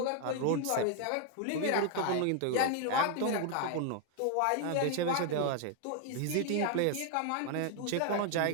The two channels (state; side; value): different; both; correlation 0.00